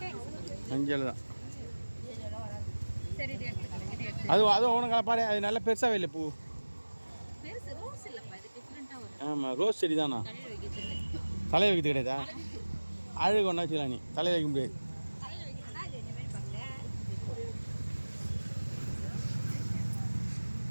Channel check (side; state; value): both; inverted; correlation -1.00